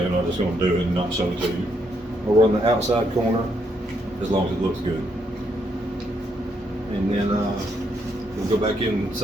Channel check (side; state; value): both; normal; correlation 0.76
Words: I'm not just going to do it and not show it to you. We'll run the outside corner as long as it looks good. And then we'll go back